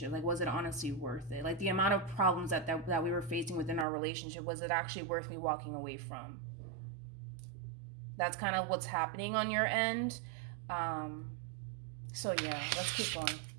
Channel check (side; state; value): left; drops out; at 3.9 s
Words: Like, was it honestly worth it? Like, the amount of problems that we were facing within our relationship, was it actually worth me walking away from? That's kind of what's happening on your end. So yeah, let's keep going.